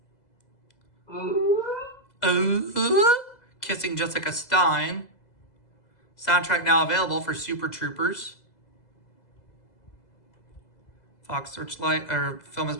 Kissing Jessica Stein. Soundtrack now available for Super Troopers. Fox Searchlight, or film has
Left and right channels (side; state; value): right; late; 2.0 ms